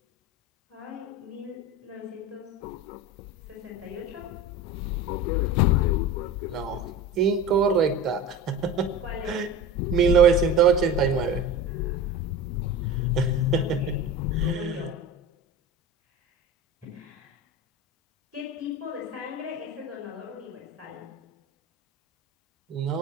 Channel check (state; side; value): normal; both; correlation 0.31